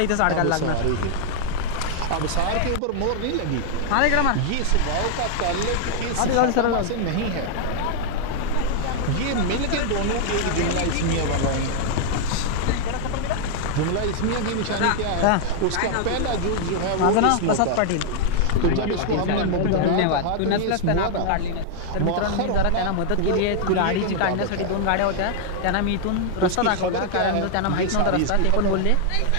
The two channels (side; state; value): both; different; correlation 0.00